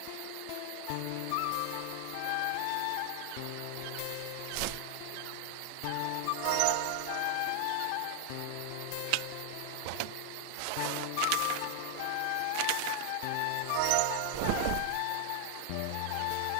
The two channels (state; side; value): different; both; correlation 0.00